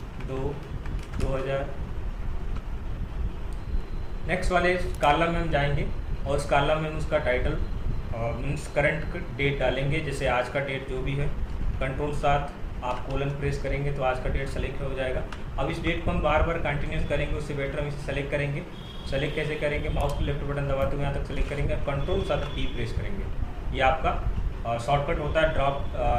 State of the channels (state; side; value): identical; both; correlation 1.00